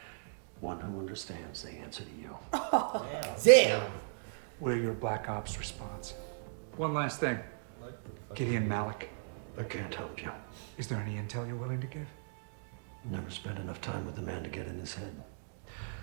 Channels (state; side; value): silent; left; digital silence